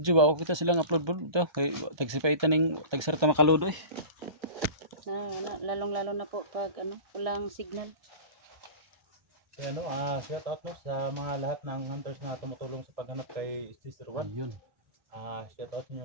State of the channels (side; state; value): left; late; 1.3 ms